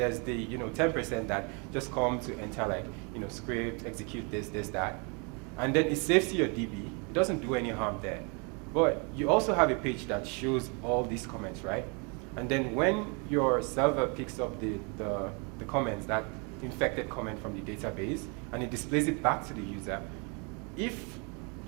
the 10% that just come to enter like script, execute this, that, and then it saves to your DB. It doesn't do any harm there, but you also have a page that shows all these comments, right? And then when your server picks up the comments, that infected comment from the database, and it displays it back to the user, if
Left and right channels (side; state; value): left; quieter; 33.8 dB